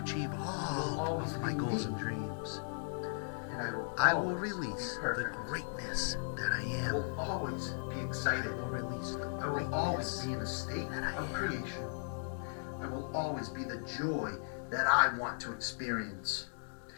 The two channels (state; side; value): silent; right; digital silence